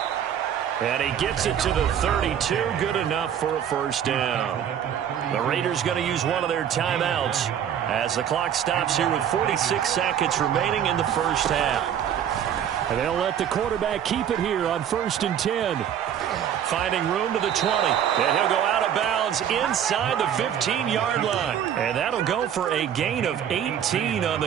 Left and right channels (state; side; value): quieter; left; 9.3 dB